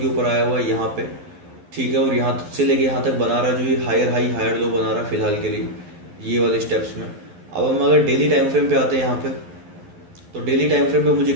ऊपर आया हुआ है यहाँ पे, ठीक है। और यहाँ से लेके यहाँ तक बना रहा है, जो ये हायर हाई हायर लो बना रहा है फिलहाल के लिए ये वाले स्टेप्स में। अब हम अगर डेली टाइम फ्रेम पे आते हैं यहाँ पे, तो डेली टाइम फ्रेम पे मुझे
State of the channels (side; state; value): left; late; 11 ms